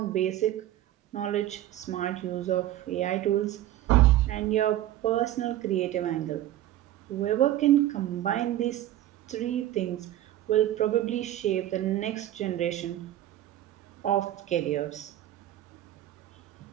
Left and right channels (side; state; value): left; quieter; 13.4 dB